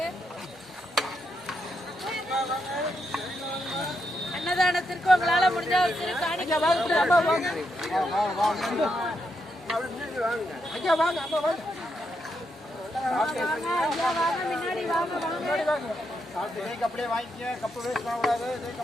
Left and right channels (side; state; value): both; normal; correlation 0.81